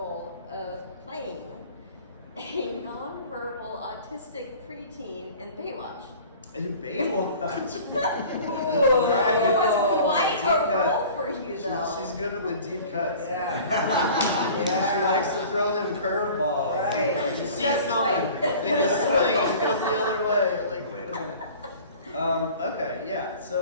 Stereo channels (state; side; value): inverted; both; correlation -0.44